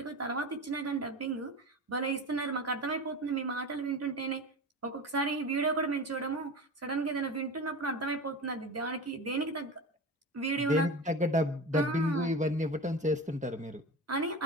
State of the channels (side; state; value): both; normal; correlation 0.30